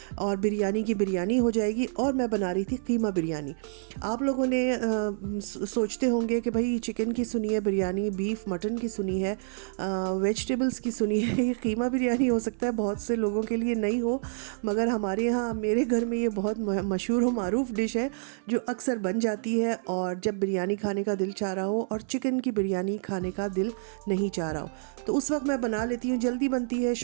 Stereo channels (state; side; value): silent; left; 58 dB below the other